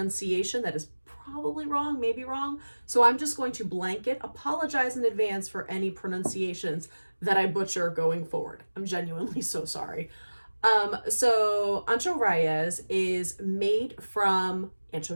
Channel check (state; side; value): inverted; both; correlation -1.00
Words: that is probably wrong, maybe wrong. So I'm just going to blanket apologize in advance for any pronunciations that I butcher going forward. I'm genuinely so sorry. So Ancho Reyes is made from